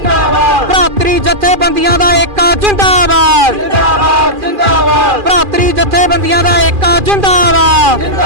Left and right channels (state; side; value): late; left; 2.4 ms